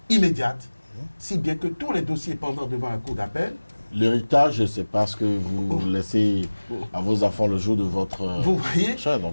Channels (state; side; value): inverted; both; correlation -1.00